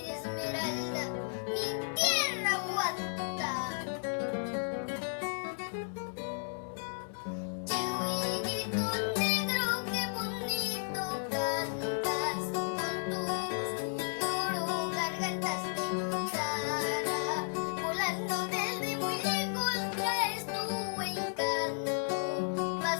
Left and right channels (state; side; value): silent; right; digital silence